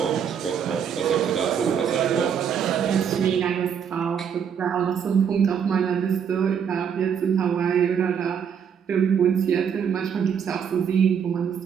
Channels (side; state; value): left; quieter; 7.6 dB